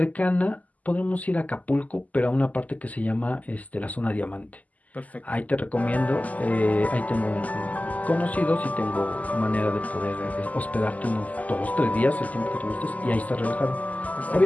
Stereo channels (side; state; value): right; late; 0.075 ms